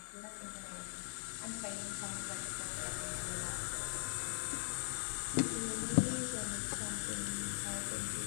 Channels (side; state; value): right; silent; digital silence